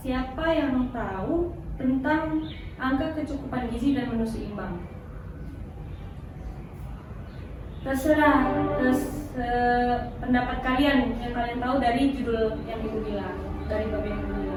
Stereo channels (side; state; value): both; identical; correlation 1.00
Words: siapa yang tahu tentang angka kecukupan gizi dan menu seimbang? Terserah pendapat kalian yang kalian tahu dari judul yang Ibu bilang, dari bab yang Ibu